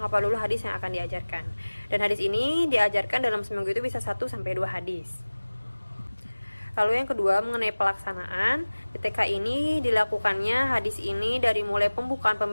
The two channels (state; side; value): inverted; both; correlation -1.00